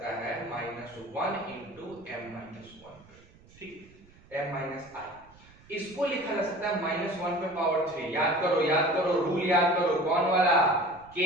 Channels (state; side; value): noise; right; rumble, 25 dB below the sound